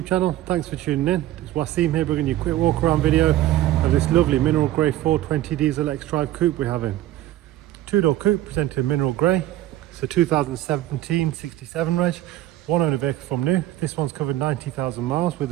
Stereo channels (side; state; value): left; quieter; 14.3 dB